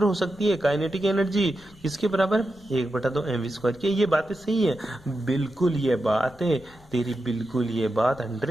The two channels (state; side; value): noise; left; rumble, 25 dB below the sound